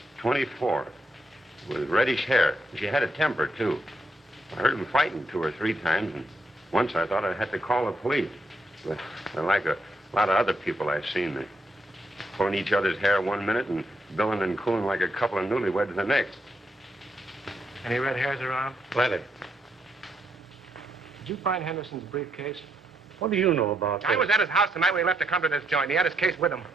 24, with reddish hair. She had a temper, too. I heard them fighting 2 or 3 times, and once I thought I had to call the police. But they're like a lot of other people I've seen. They're pulling each other's hair one minute and billing and cooling like a couple of newlyweds the next. Any red hairs around? Plenty. Did you find Henderson's briefcase? What do you know about this? I was at his house the night when he left to come to this joint. He had his case with him.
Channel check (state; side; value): normal; both; correlation 0.78